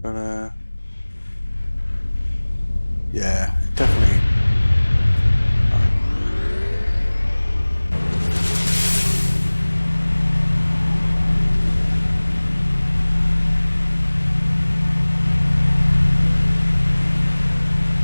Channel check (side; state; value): both; inverted; correlation -1.00